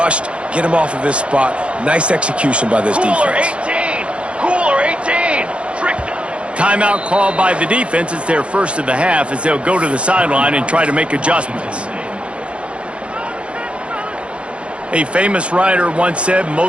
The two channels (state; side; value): late; left; 0.060 ms